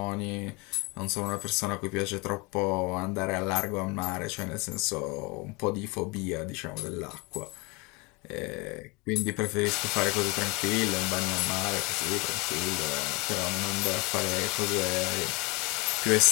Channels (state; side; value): quieter; right; 26.9 dB